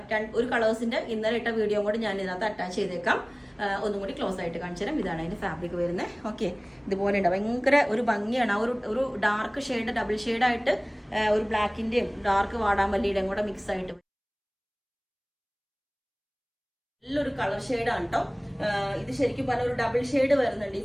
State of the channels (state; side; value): identical; both; correlation 1.00